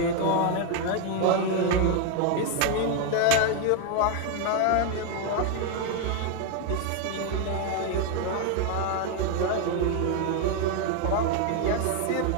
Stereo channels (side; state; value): both; different; correlation 0.01